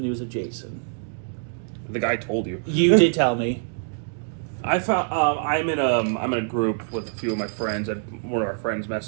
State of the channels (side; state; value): left; silent; digital silence